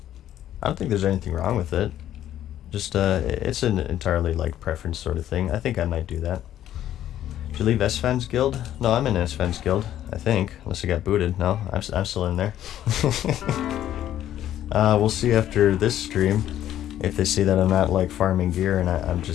don't think there's anything wrong with it. Just, it's an entirely, like, preference sort of thing. I think I might do that. Did you leave S-Fans Guild? No, I'm in S-Fans Guild, I think. Unless I got booted. No, I'm still in there. We'll see after this stream if they see that I'm not, like, farming gear and I'm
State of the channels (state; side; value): quieter; right; 11.9 dB